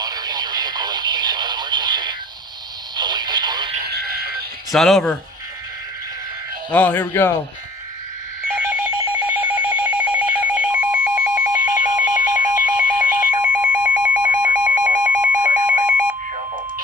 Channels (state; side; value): normal; both; correlation 0.53